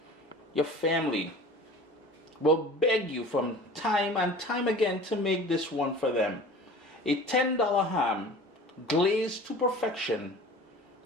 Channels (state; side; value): normal; both; correlation 0.42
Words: your family will beg you from time and time again to make this one for them. A $10 ham glazed to perfection